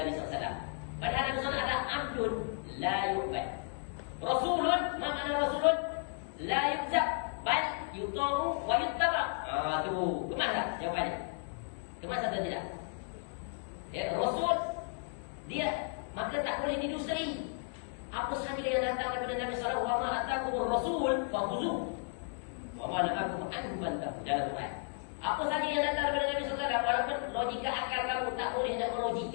SAW. Padahal Nabi SAW adalah abdun, la yu'bad. Rasulun, makna rasulun, la yuzab, bal yuta'u wa yuttaba. Tu kemas tak jawapannya? Kemas atau tidak? Ya, Rasul dia maka tak boleh didustai. Apa sahaja yang datang daripada Nabi sallallahu alaihi wasallam, wa ma atakumur rasul fakhuzu wa ma nahakum anhu fantahu. Dalam Quran, apa sahaja yang datang daripada Nabi sallallahu alaihi wasallam, walaupun logika akal kamu tak boleh nak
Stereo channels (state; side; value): silent; right; 55 dB below the other